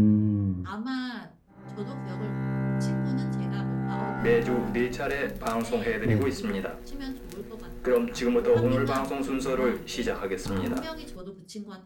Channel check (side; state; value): both; identical; correlation 1.00